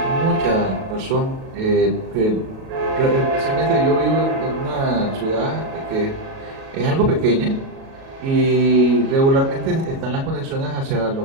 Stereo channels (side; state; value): left; late; 37 ms